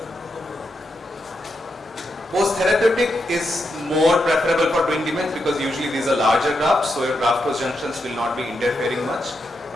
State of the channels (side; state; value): both; normal; correlation 0.84